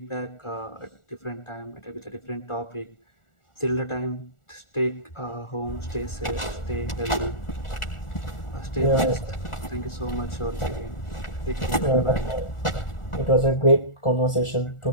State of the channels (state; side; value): late; right; 1.4 ms